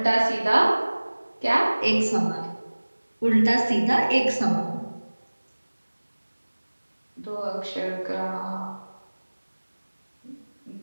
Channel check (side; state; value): both; inverted; correlation -1.00